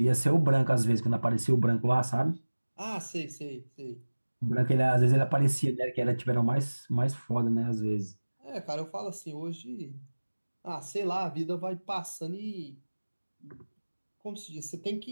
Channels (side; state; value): both; inverted; correlation -1.00